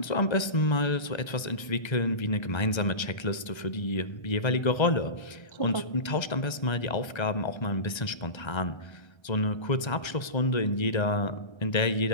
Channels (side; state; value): right; late; 1.3 ms